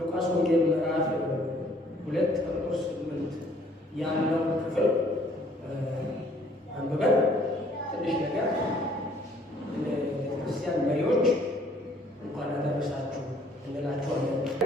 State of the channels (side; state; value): both; normal; correlation 0.60